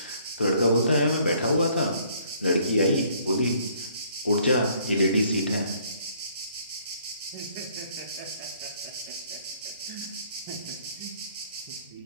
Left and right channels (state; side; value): inverted; both; correlation -0.62